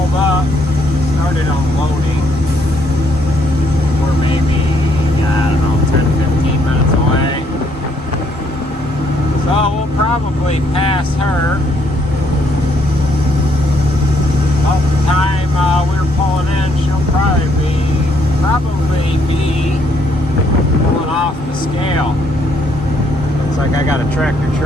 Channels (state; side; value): normal; both; correlation 0.70